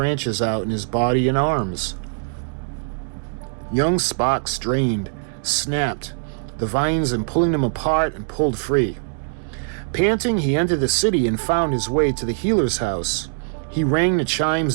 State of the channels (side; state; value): left; silent; digital silence